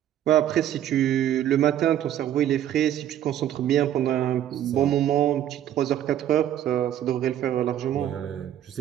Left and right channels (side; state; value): left; quieter; 11.2 dB